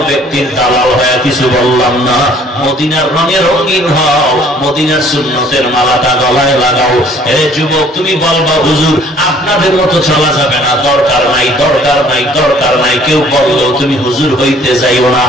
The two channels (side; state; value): both; normal; correlation 0.57